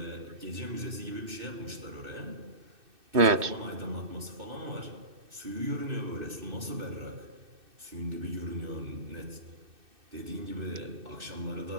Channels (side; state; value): left; late; 2.6 ms